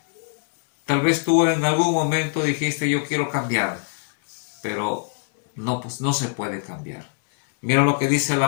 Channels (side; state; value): right; silent; digital silence